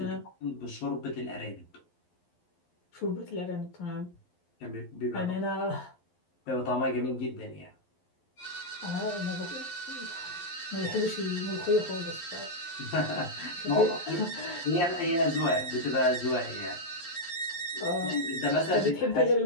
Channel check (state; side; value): late; right; 11 ms